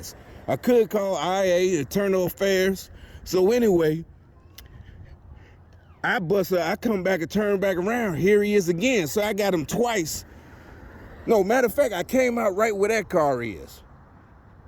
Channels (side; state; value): both; identical; correlation 1.00